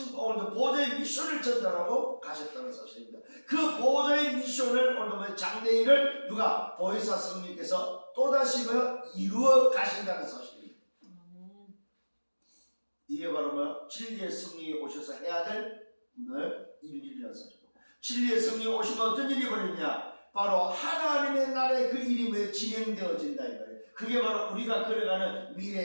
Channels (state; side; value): inverted; both; correlation -1.00